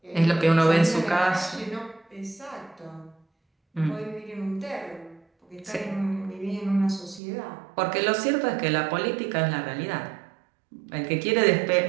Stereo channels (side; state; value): left; drops out; at 7.2 s